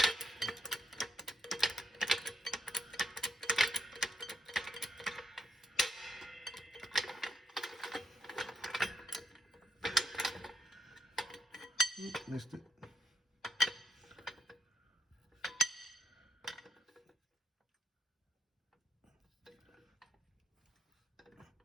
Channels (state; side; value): normal; both; correlation 0.75